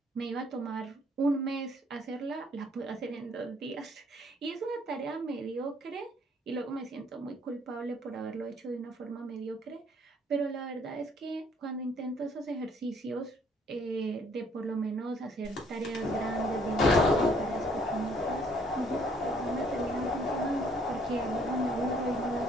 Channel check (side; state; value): both; normal; correlation 0.63